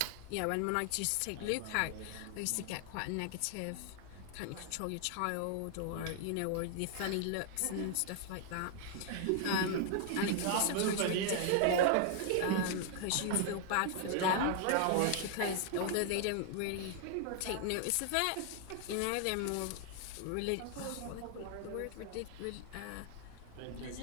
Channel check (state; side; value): different; both; correlation 0.00